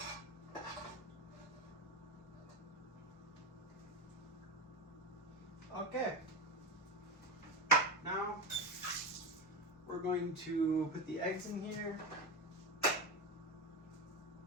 Okay, now we're going to put the eggs in here.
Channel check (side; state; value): both; normal; correlation 0.17